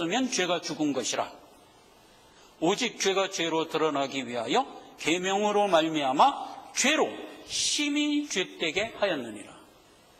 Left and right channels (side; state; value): both; identical; correlation 1.00